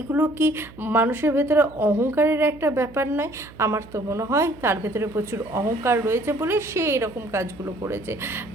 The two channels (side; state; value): right; noise; hum, 20 dB below the sound